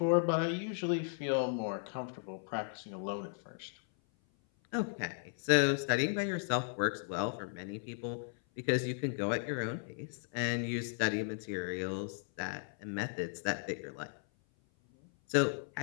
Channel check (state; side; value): silent; right; 54 dB below the other